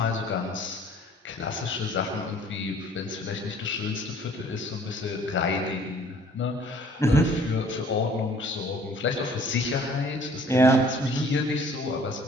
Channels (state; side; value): normal; both; correlation 0.55